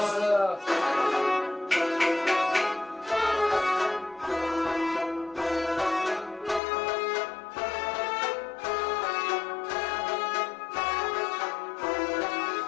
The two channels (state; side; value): drops out; right; at 6.6 s